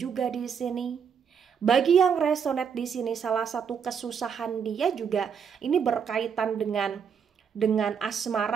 di sini. Bagi yang resonate di sini, salah satu kesusahan dia juga ini berkaitan dengan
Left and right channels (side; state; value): left; quieter; 7.0 dB